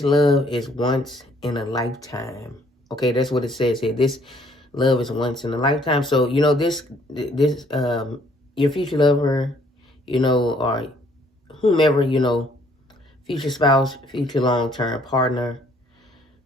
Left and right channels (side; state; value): both; normal; correlation 0.63